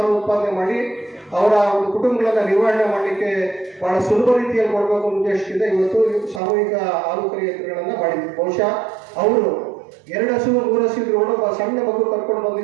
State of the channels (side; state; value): left; drops out; at 6.4 s